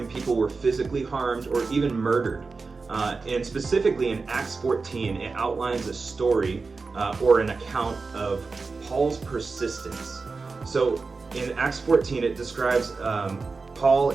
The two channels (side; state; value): left; quieter; 4.3 dB